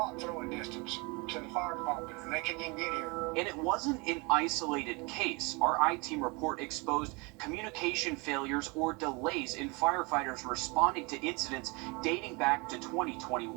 throwing distance. to the fire department, and they couldn't even get here. And it wasn't an isolated case. Our I-Team report exposed communication failures or delays in firefighters responding to incidents dating back to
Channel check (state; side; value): quieter; left; 28.6 dB